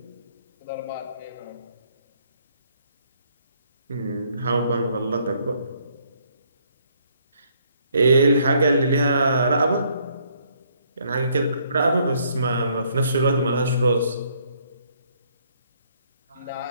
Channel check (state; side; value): inverted; both; correlation -0.67